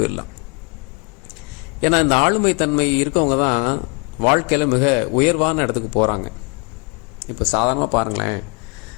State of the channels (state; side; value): quieter; right; 33.6 dB